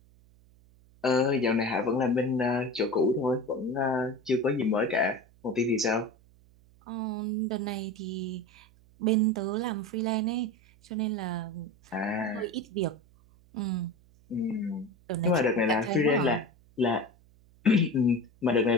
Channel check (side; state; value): right; noise; hum, 28 dB below the sound